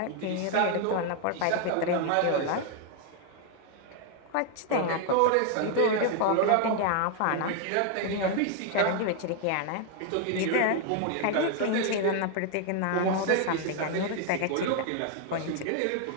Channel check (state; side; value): different; both; correlation 0.00